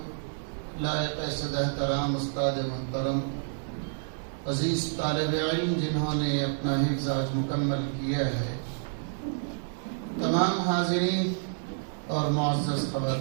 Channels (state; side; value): silent; left; digital silence